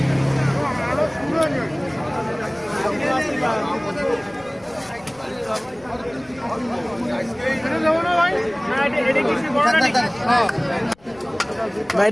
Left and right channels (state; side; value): noise; left; rumble, 28 dB below the sound